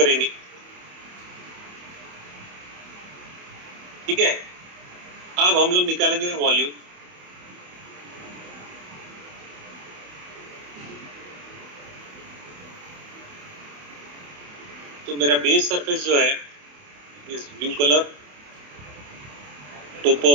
ठीक है। अब हम लोग निकालेंगे वॉल्यूम। तो मेरा बेस सरफेस जो है इस blue colour, topo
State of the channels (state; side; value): late; left; 28 ms